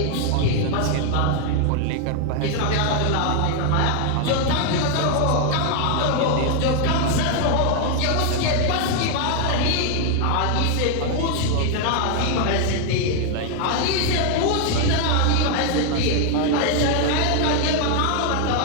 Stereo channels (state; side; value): different; both; correlation 0.01